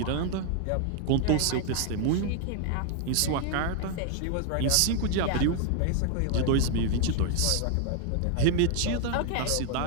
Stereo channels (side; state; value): both; different; correlation 0.00